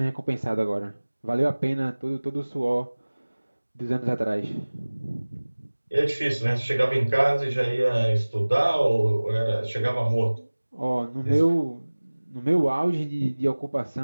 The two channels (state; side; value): inverted; both; correlation -1.00